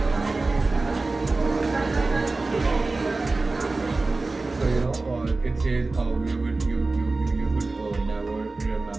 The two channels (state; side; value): quieter; left; 3.4 dB